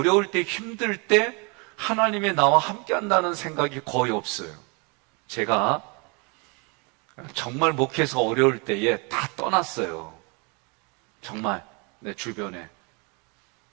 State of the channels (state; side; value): quieter; left; 32.1 dB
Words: 때, 힘들 때 하나님이 나와 함께 한다는 생각이 거의 없어요. 제가 정말 목회에서 어려울 때에 다 떠났어요. 정말 내 주변에